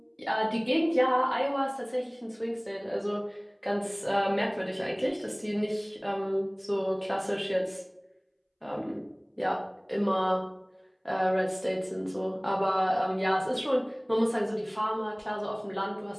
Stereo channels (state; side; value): identical; both; correlation 1.00